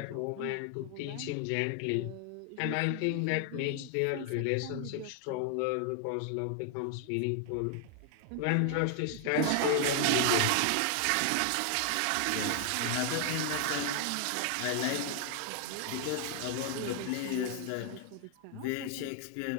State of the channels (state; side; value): different; both; correlation 0.00